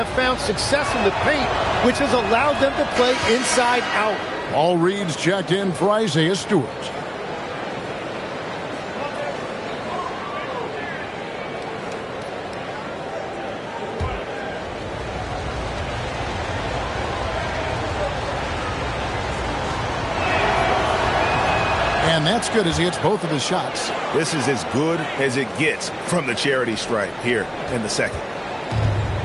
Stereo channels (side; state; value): both; identical; correlation 1.00